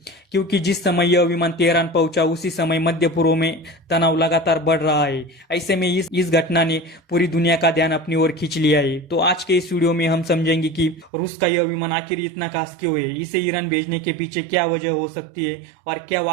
क्योंकि जिस समय यह विमान तेहरान पहुंचा उसी समय मध्य पूर्व में तनाव लगातार बढ़ रहा है। ऐसे में इस घटना ने पूरी दुनिया का ध्यान अपनी ओर खींच लिया है। तो आज के इस वीडियो में हम समझेंगे कि रूस का यह विमान आखिर इतना खास क्यों है, इसे ईरान भेजने के पीछे क्या वजह हो सकती है और क्या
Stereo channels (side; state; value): left; drops out; at 11.1 s